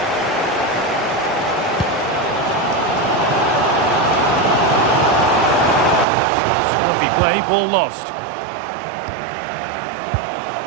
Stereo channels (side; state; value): left; drops out; at 6.1 s